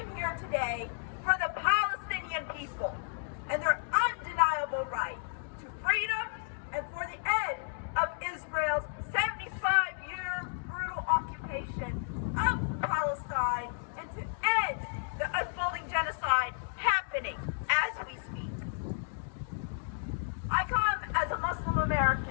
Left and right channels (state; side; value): silent; right; digital silence